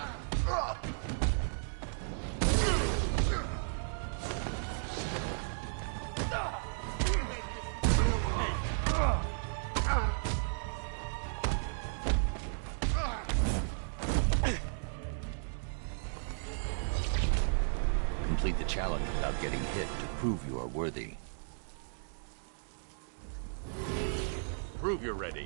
Complete the challenge without getting hit to prove you are worthy. Prove you're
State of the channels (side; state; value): left; silent; digital silence